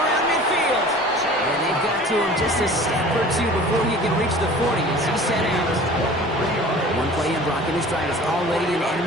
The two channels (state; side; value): normal; both; correlation 0.44